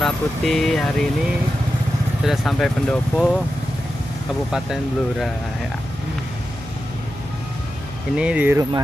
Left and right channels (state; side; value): noise; left; hum, 15 dB below the sound